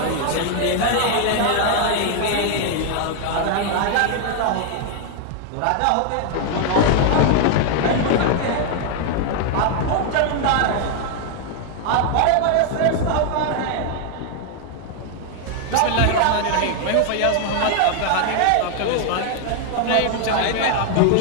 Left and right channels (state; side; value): different; both; correlation 0.00